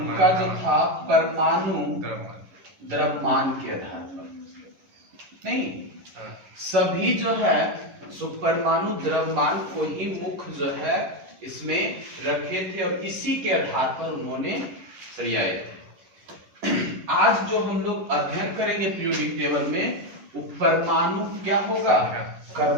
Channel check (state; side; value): late; left; 11 ms